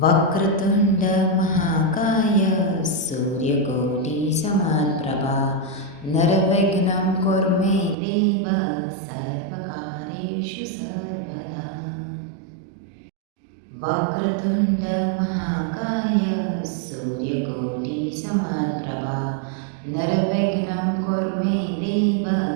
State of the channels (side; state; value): left; drops out; at 8.0 s